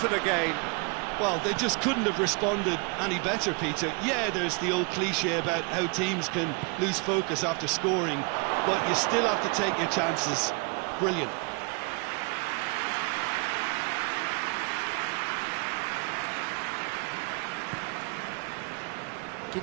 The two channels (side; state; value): left; quieter; 32.8 dB